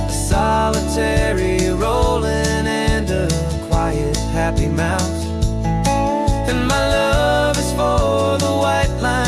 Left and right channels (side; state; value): both; identical; correlation 1.00